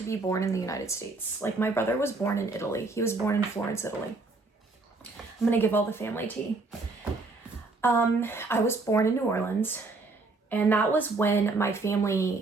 be born in the United States. Like my brother was born in Italy. He was born in Florence, Italy. I'm gonna give all the family tea. I was born in New Orleans, and that was when my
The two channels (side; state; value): left; quieter; 3.6 dB